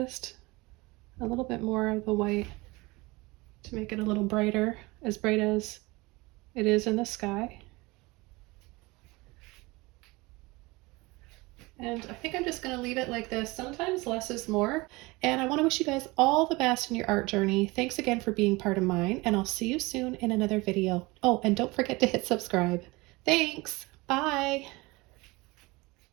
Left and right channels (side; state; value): left; quieter; 23.4 dB